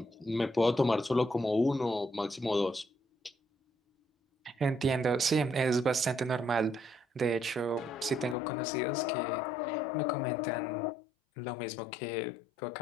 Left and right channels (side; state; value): right; drops out; at 8.3 s